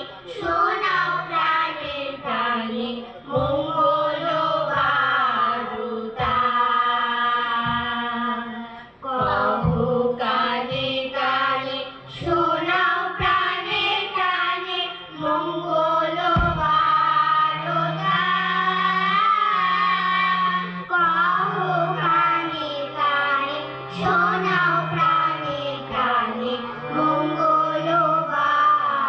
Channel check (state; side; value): identical; both; correlation 1.00